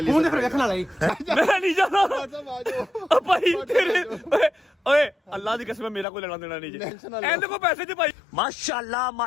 लिए मुंह फिर देखना लाई मैं नहीं जाना आ जाओ। भाई तेरे ओए अल्लाह की कसम मेरा कोई लेना देना नहीं जी एंड को पैसे दे भाई माशाल्लाह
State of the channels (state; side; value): drops out; right; at 6.1 s